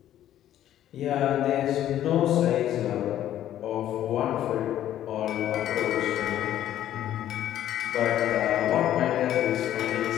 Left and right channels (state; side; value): quieter; right; 12.0 dB